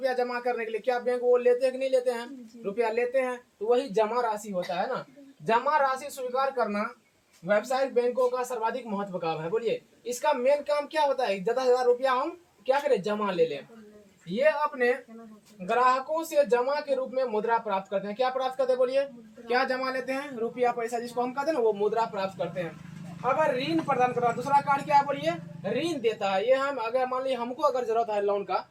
जमा करने के लिए, क्या बैंक वो लेते हैं कि नहीं लेते हैं? रुपया लेते हैं, तो वही जमा राशि होता है ना। जमा राशि स्वीकार करना व्यावसायिक बैंकों का सर्वाधिक महत्व काम है। बोलिए इसका मेन काम क्या होता है, ज्यादा से ज्यादा रुपया हम क्या करें, जमा ले लें। ये अपने ग्राहकों से जमा के रूप में मुद्रा प्राप्त करते हैं। क्या प्राप्त करते हैं बोलिए, क्या जमा लेते हैं, रुपया पैसा जिसको हम कहते हैं ना, वो मुद्रा प्राप्त करते हैं। अगर ऋण प्रदान करना, दूसरा कार्य क्या है बोलिए, ऋण देता है। ये हम अगर मान लीजिए हमको अगर जरूरत है लोन का,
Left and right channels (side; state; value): both; identical; correlation 1.00